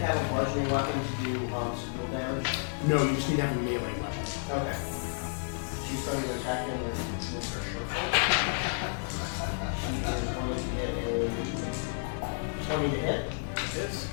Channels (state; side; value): silent; right; digital silence